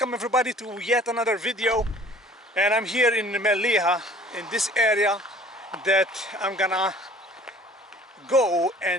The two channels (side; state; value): both; normal; correlation 0.50